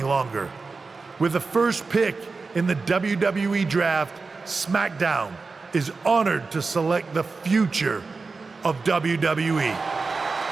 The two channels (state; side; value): quieter; left; 4.2 dB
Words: longer. With the first pick in the WWE Draft, SmackDown is honored to select the future of WWE.